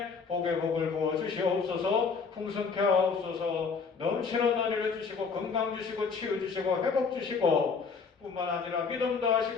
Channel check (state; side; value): quieter; right; 5.2 dB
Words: 복의 복을 부어 주시옵소서. 풍성케 하옵소서. 넘치는 은혜를 주시고 건강 주시고 치유 주시고 회복 주시고 뿐만 아니라 믿음도